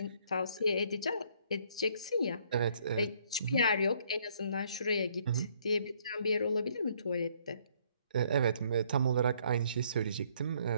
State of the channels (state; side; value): inverted; both; correlation -0.65